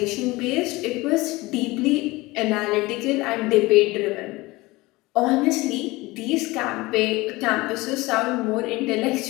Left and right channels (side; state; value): right; quieter; 21.3 dB